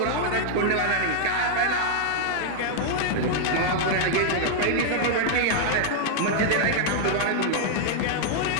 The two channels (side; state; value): both; different; correlation -0.01